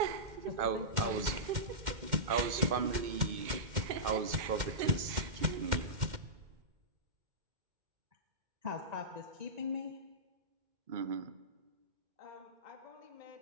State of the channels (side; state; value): left; late; 2.1 ms